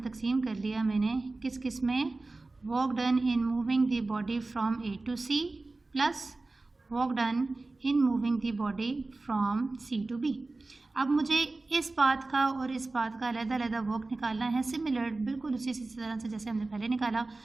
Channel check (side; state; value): left; quieter; 3.3 dB